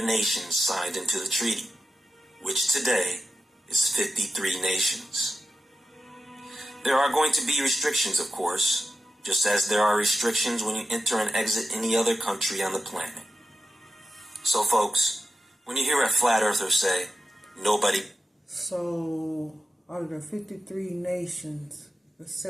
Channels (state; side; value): normal; both; correlation 0.92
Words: nations signed into the treaty, which today is 53 nations. There are going to be restrictions, of course, just as there are restrictions when you enter and exit any other country on the planet. So, folks, when you hear a flat earther say, nobody... So, out of the 53 nations that